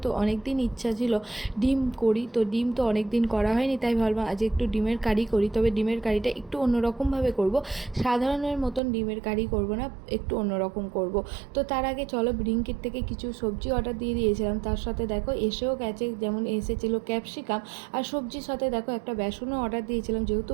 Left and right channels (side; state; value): left; drops out; at 8.8 s